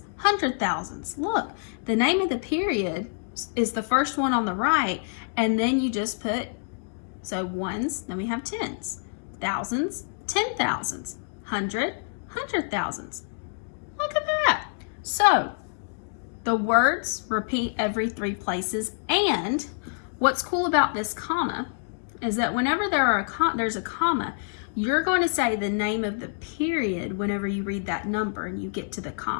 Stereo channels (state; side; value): silent; right; digital silence